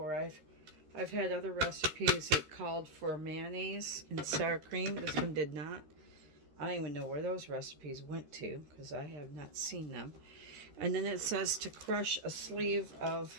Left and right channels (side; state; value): left; late; 13 ms